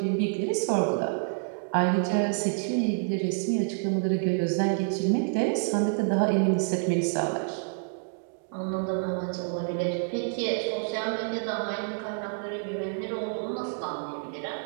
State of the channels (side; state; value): left; silent; digital silence